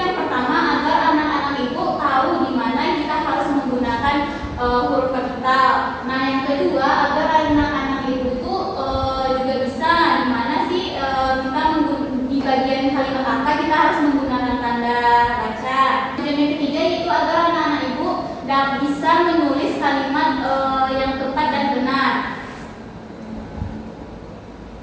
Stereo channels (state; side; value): identical; both; correlation 1.00